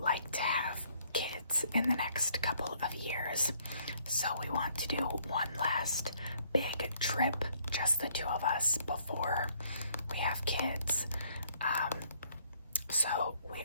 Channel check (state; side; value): inverted; both; correlation -0.65